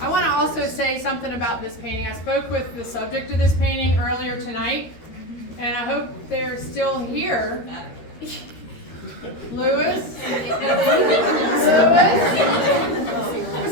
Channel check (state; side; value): late; right; 13 ms